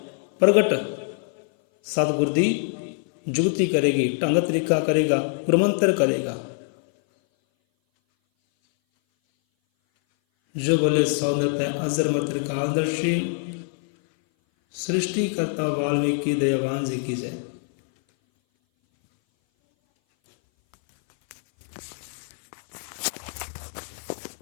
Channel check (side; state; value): right; silent; 58 dB below the other